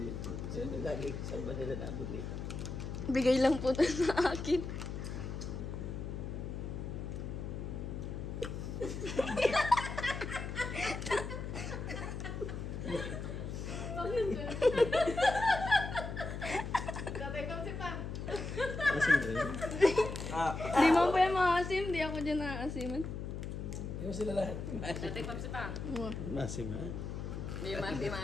Bigay lang po ito sa akin. Di mo pa yung maasim, di ako dyan naasiman. Yung sila lahat. Tatay Papsi pa. Masim ha? Di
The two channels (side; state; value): left; noise; hum, 5 dB below the sound